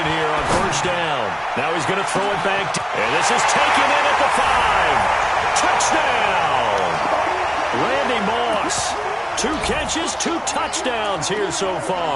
here on first down. Now he's going to throw it back. And this is taken in at the 5. Touchdown! Randy Moss. 2 catches, 2 touchdowns here so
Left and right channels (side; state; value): both; identical; correlation 1.00